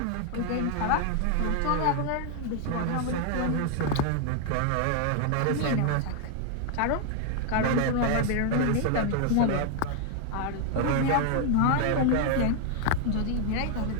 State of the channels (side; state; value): both; different; correlation 0.00